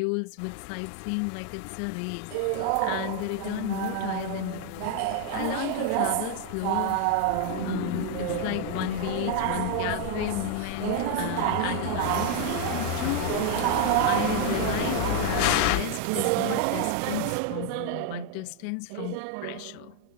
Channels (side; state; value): both; different; correlation 0.00